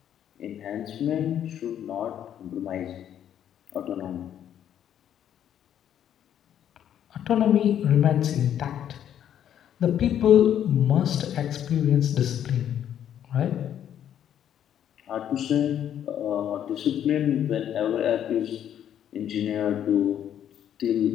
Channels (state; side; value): quieter; right; 10.1 dB